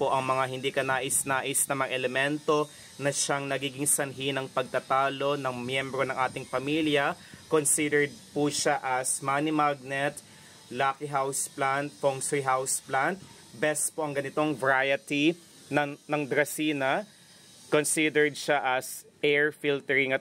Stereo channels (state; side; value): identical; both; correlation 1.00